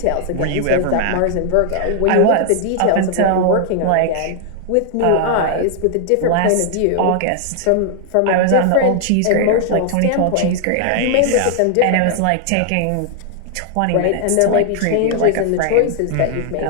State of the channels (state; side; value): different; both; correlation 0.00